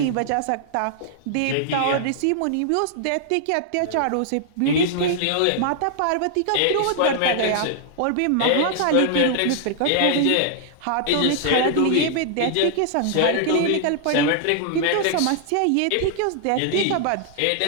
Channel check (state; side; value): different; both; correlation -0.01